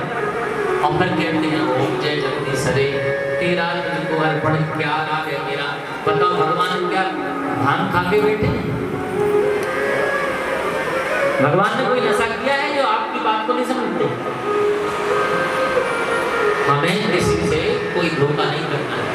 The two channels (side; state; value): both; identical; correlation 1.00